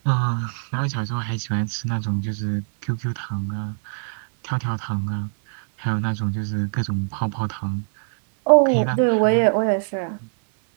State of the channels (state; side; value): silent; left; 62 dB below the other